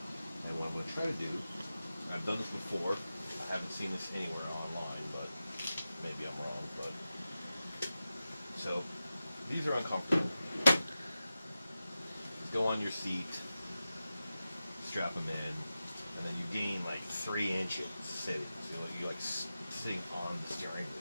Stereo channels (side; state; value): both; inverted; correlation -0.93